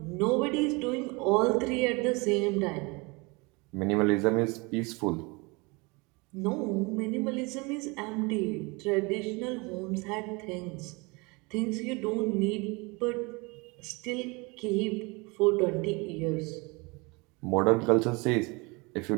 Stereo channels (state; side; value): quieter; left; 27.3 dB